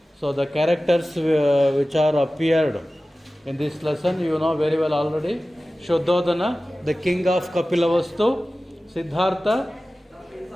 the characters which are appeared in this lesson, you know very well already. Shuddhodana, the king of Kapilavastu; Siddhartha,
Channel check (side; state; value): both; normal; correlation 0.96